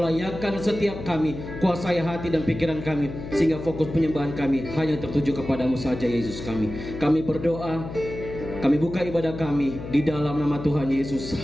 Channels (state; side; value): noise; left; hum, 10 dB below the sound